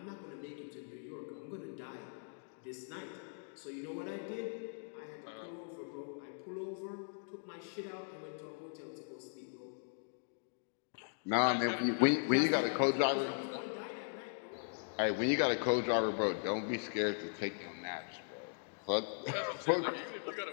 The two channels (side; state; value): right; silent; digital silence